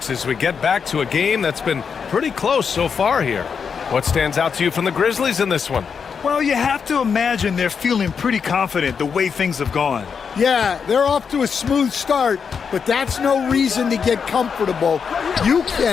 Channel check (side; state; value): right; quieter; 6.3 dB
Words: as we get back to a game that's been pretty close so far here. What stands out to you from the Grizzlies in this one? Well, you have to imagine they're feeling pretty confident the way things have gone. Yeah, they're off to a smooth start, but that's no reason to get comfortable. You